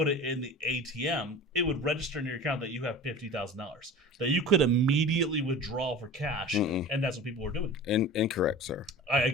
it in the ATM, it would register in your account that you have $50,000 that you could immediately withdraw for cash, and that's what people were doing. Incorrect, sir.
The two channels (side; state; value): both; normal; correlation 0.36